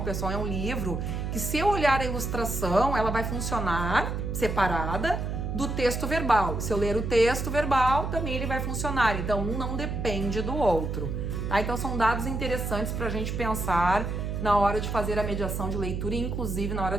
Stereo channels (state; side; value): noise; right; hum, 3 dB below the sound